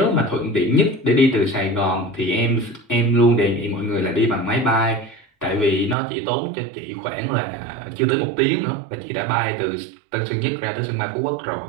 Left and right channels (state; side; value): drops out; left; at 6.0 s